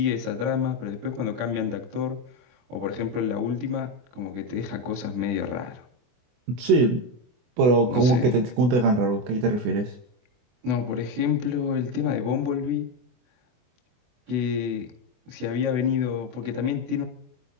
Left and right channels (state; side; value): late; left; 24 ms